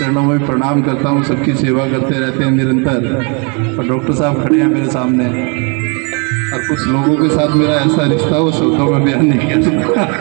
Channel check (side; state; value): left; quieter; 34.6 dB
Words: में प्रणाम करता हूँ, सबकी सेवा करते रहते हैं निरंतर। और डॉक्टर साहब खड़े हैं मेरे सामने, और कुछ लोगों के साथ मेरा ऐसा रिश्ता हो शब्दों में बयान नहीं किया सकता।